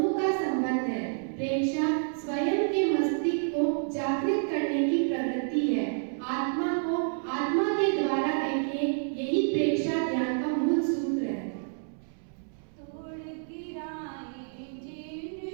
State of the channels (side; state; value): left; silent; 59 dB below the other